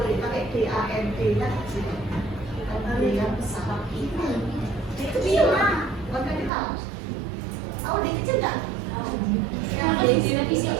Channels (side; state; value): left; drops out; at 6.5 s